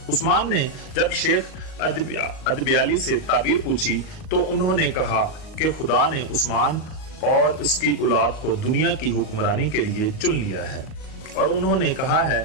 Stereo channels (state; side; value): late; right; 38 ms